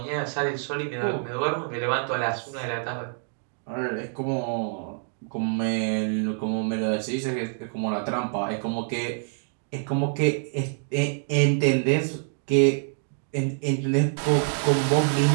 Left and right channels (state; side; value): silent; left; 61 dB below the other